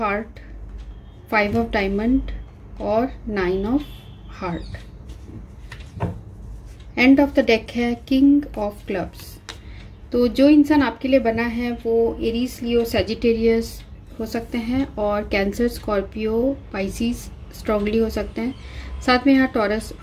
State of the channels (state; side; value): identical; both; correlation 1.00